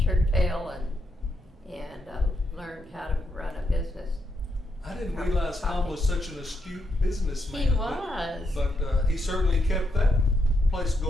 tail and learned how to run a business. I didn't realize Tom was such an astute businessman. He was. But he certainly kept that place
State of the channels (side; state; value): both; normal; correlation 0.79